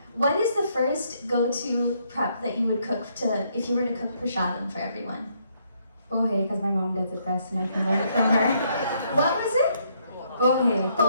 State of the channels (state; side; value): inverted; both; correlation -0.71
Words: What is the first go-to prep that you would cook if you were to cook prasadam for everyone? Pohe, because my mom does it best and I can learn it from her. What was it? Pohe.